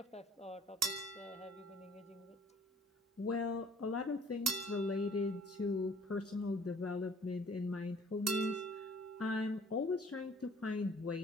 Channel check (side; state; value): both; normal; correlation 0.54